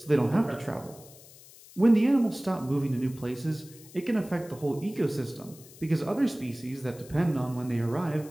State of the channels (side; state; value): left; noise; hiss, 21 dB below the sound